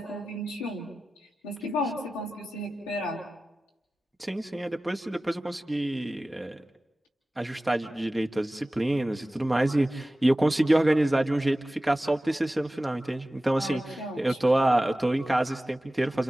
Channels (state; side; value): normal; both; correlation 0.96